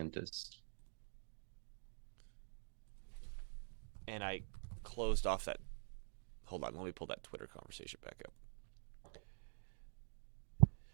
And I closed off that. Hold on, let me pull that Twitter conversation back up.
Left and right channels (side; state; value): left; silent; digital silence